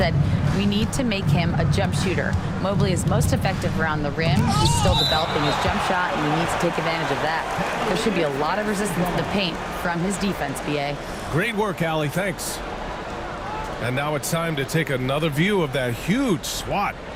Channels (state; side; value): identical; both; correlation 1.00